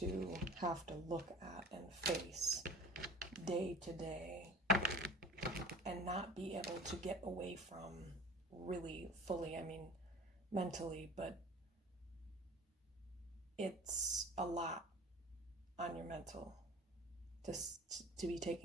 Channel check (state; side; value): normal; both; correlation 0.42